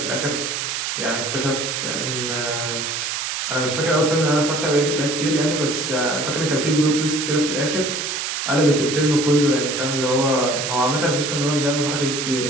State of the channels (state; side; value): noise; right; hiss, 2 dB below the sound